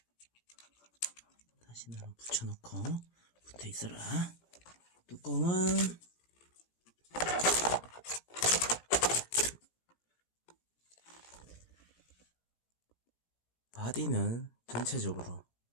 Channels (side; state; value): right; late; 17 ms